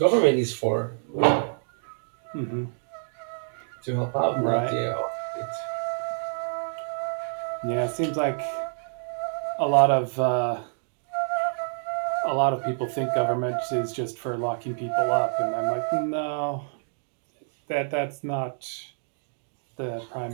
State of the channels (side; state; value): left; silent; digital silence